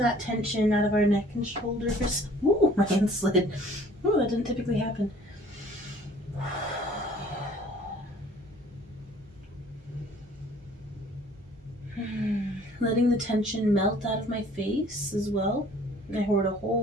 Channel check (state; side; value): normal; both; correlation 0.53